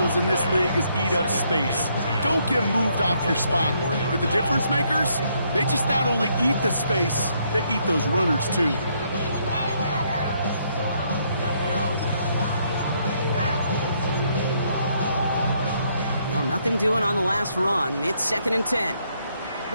in this league is eat up space. Don't get moved off your spot. But the difference makers, they just not only eat the space, they eat those runners too. Well, nothing doing on the last run. It's second and 10.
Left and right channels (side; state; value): both; inverted; correlation -0.72